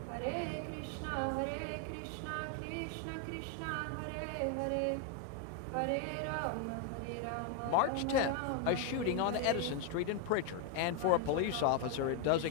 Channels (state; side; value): different; both; correlation 0.01